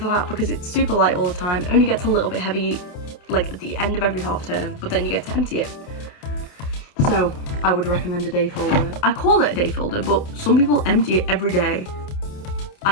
that because it's super light all the time. It only gets a little bit heavy like at the end of every half term, but then you get to empty it. So I would recommend a day folder. I call it a day folder, but some people empty it every day.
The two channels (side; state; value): right; late; 28 ms